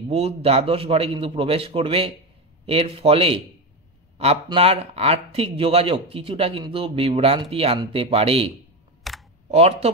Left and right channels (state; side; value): normal; both; correlation 0.15